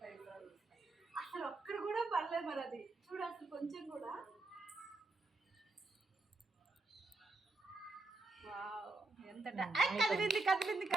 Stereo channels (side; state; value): left; quieter; 3.2 dB